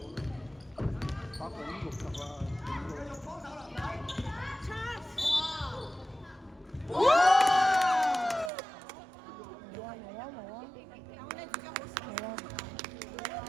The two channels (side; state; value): left; drops out; at 8.5 s